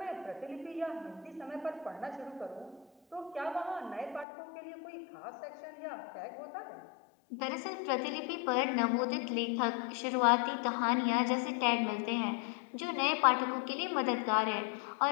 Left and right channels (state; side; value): drops out; right; at 4.2 s